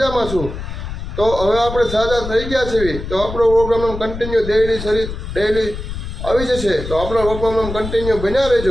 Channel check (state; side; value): noise; left; rumble, 8 dB below the sound